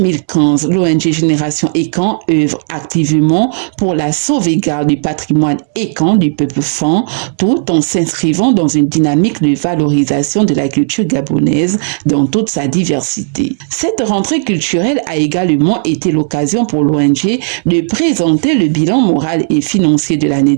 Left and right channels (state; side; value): silent; left; digital silence